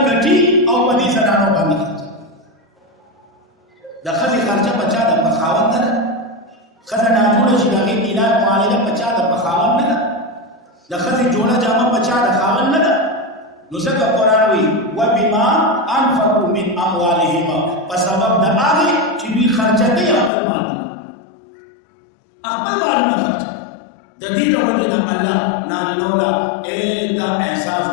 ګټي او په دې زنانو باندې د ښځې خرچه بچا د پخاوند نه ښځه ناجوړه شي د هغې علاج معالجه بچا د پخاوند نه د ښځې جوړه جامه بچا د خاوند نه ده نو ځکه قرآن وایي وبما انفقوا من اموالهم په سبب د هغې چې دوی خرچه کوي خپل مالونه خرچه د دې د وجه نه الله نارینه ولا دا احساس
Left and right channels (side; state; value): right; drops out; at 20.3 s